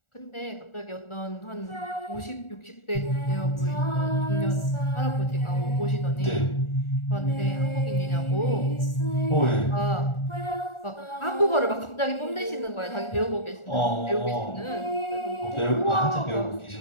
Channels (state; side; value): late; right; 1.4 ms